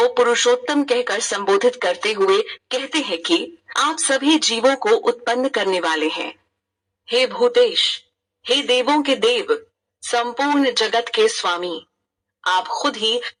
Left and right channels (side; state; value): both; identical; correlation 1.00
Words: पुरुषोत्तम कहकर संबोधित करते हुए कहते हैं कि आप सभी जीवों को उत्पन्न करने वाले हैं। हे भूतेश, हे देवों के देव, संपूर्ण जगत के स्वामी, आप खुद ही